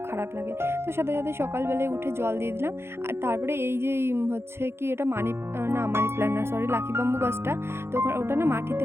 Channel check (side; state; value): left; late; 0.12 ms